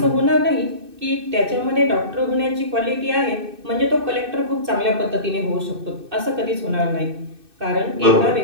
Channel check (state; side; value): late; left; 2.6 ms